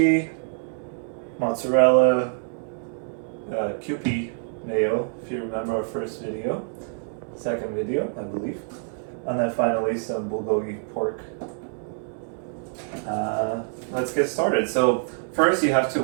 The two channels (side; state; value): left; silent; 61 dB below the other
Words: mozzarella, Kewpie Mayo, if you remember our first video, second video, I believe, and then finally some Bulgogi pork. Let's get started. So first you have to